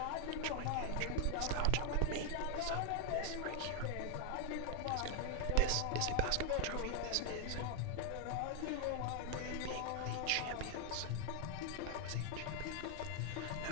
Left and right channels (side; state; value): both; different; correlation 0.00